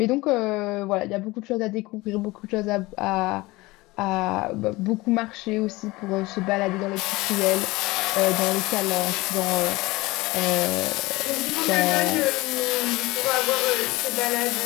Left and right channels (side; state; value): right; quieter; 21.3 dB